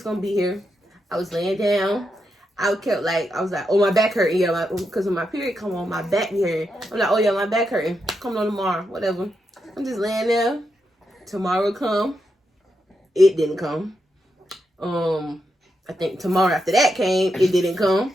gonna be here. I was laying down. I was like, oh, my back hurting. Yeah, because when my period come on, my back be hurting. I'm like, oh yeah, my back hurting. Come on tomorrow, whatever. I'm just laying there. Tomorrow come. It didn't come. I think tomorrow after that came. It didn't come.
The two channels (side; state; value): both; normal; correlation 0.84